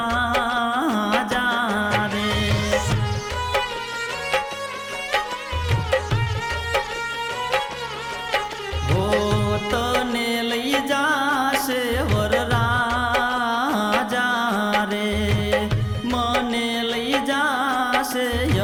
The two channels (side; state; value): both; identical; correlation 1.00